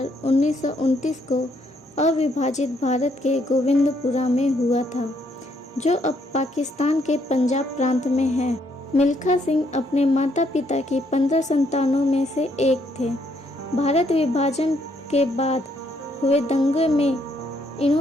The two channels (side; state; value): both; normal; correlation 0.72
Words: 1929 को अविभाजित भारत के गोविंदपुरा में हुआ था, जो अब पाकिस्तान के पंजाब प्रांत में है। मिल्खा सिंह अपने माता पिता की 15 संतानों में से एक थे। भारत विभाजन के बाद हुए दंगे में